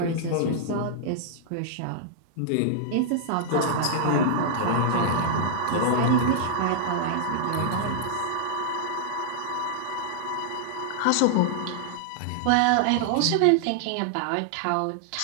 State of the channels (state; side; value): different; both; correlation -0.01